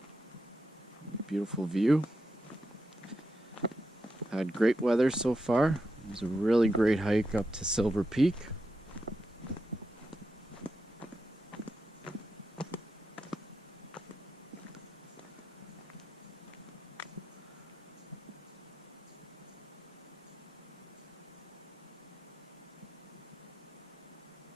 Beautiful view. Had great weather so far. It was a really great hike up to Silver Peak.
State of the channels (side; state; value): both; normal; correlation 0.86